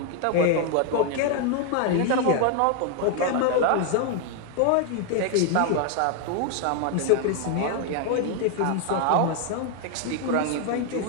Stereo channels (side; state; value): both; different; correlation 0.01